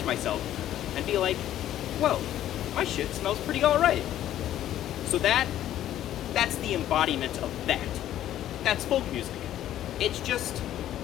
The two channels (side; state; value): right; quieter; 12.2 dB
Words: myself and be like, whoa, my shit smells pretty alright. So that's the embodiment of that. That's folk music. It's just,